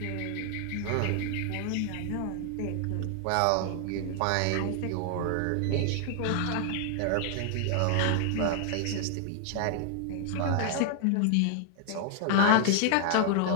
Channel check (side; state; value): both; different; correlation 0.00